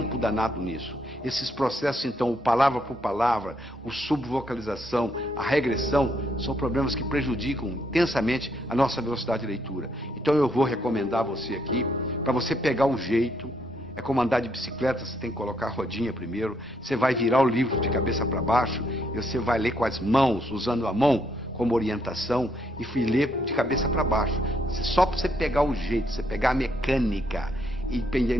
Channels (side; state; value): both; normal; correlation 0.73